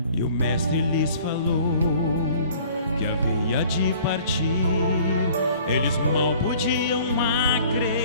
E o mestre lhes falou que havia de partir. Eles mal podiam acreditar.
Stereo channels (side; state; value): both; inverted; correlation -0.51